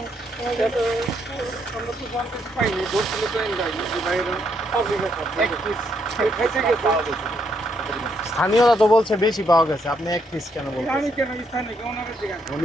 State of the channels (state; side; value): normal; both; correlation 0.75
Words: তো জানতে পাইনি, ধরছিল তো এনজাইনি যে বাইরে পাবলিক এক পিস খাইতে গেছে। স্থানীয়রা তো বলছে বেশি পাওয়া গেছে, আপনি এক পিস কেন আমি বলছেন? কেন স্থানীয় ওনাদের জিজ্ঞাসা,